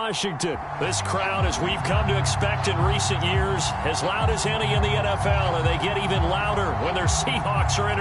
This crowd, as we've come to expect in recent years, as loud as any in the NFL, and they get even louder when their Seahawks are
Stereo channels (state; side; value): identical; both; correlation 1.00